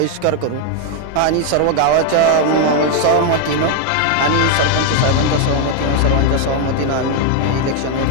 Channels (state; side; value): different; both; correlation 0.01